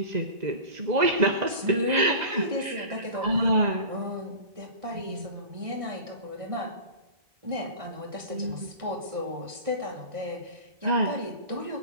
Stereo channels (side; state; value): left; late; 1.6 ms